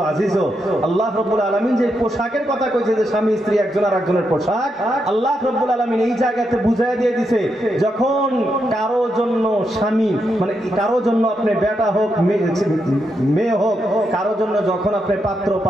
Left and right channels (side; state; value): both; normal; correlation 0.83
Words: আজিজ, আল্লাহ রাব্বুল আলামিন যে পোশাকের কথা কইছে, যে স্বামী স্ত্রী একজন আর একজনের পোশাক, আল্লাহ রাব্বুল আলামিন এই জায়গাতে বুঝাইয়া দিয়ে দিছে, যখন কারো জন্য স্বামী, মানে কারো জন্য আপনি বেটা হোক মেয়ে হোক, কারো জন্য যখন আপনি পাত্র